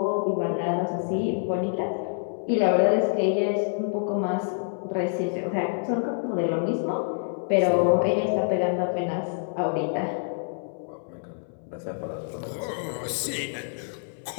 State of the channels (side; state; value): right; silent; 60 dB below the other